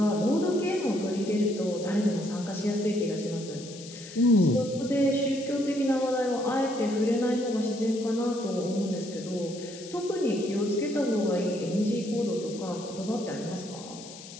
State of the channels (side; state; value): left; noise; hiss, 15 dB below the sound